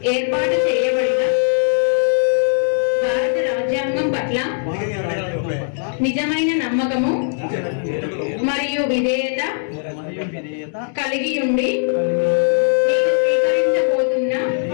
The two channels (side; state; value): right; silent; digital silence